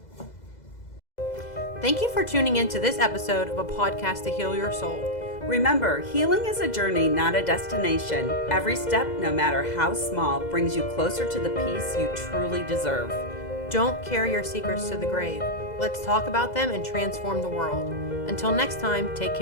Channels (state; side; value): late; right; 2.0 ms